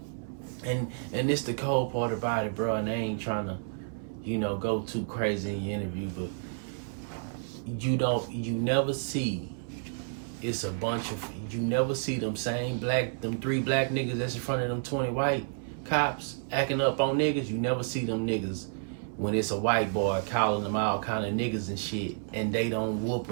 and it's the cold part about it, bro. And I ain't trying to, go too crazy in your interview, but. You never see it's a bunch of, you never see them three black niggas that's in front of them 20 white cops acting up on niggas. You never see them niggas when it's a white boy calling them all kind of niggas and shit, and they don't whoop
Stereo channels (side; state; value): left; silent; 58 dB below the other